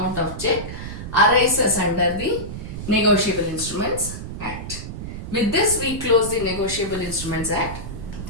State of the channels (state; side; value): noise; right; rumble, 8 dB below the sound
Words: of check arises under the Negotiable Instruments Act. With this, we close the Negotiable Instruments Act.